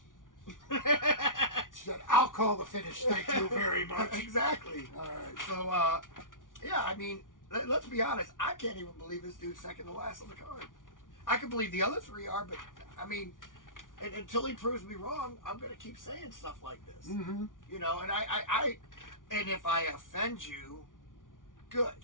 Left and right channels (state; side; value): late; right; 0.88 ms